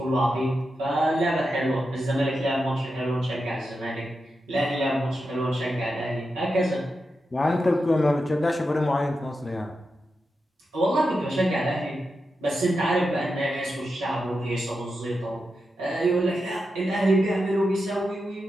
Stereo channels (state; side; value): normal; both; correlation 0.88